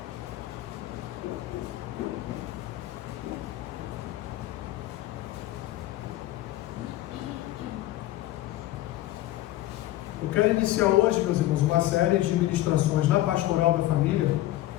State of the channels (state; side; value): quieter; right; 15.4 dB